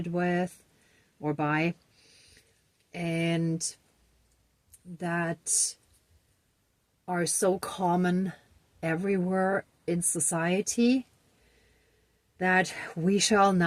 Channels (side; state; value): both; identical; correlation 1.00